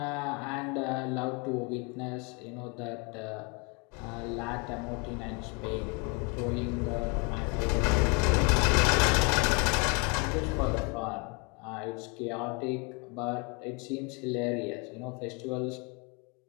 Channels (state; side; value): quieter; right; 32.4 dB